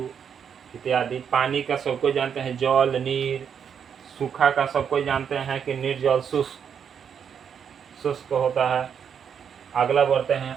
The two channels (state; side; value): quieter; left; 7.6 dB